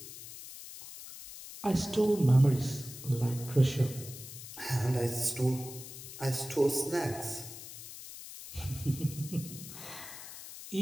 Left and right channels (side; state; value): left; noise; hiss, 13 dB below the sound